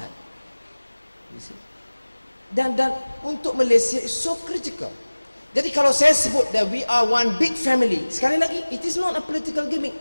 You see? Dan untuk Malaysia is so critical. Jadi kalau saya sebut that we are one big family, sekali lagi, it is not a political gimmick.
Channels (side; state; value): both; inverted; correlation -1.00